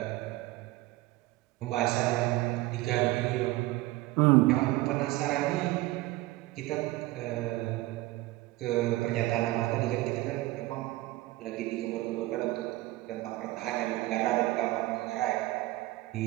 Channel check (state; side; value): quieter; left; 18.6 dB